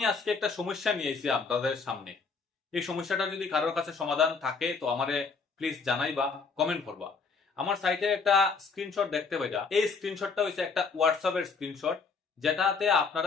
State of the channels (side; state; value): right; quieter; 4.8 dB